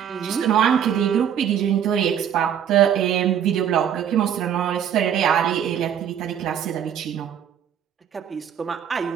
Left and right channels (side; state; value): left; quieter; 9.1 dB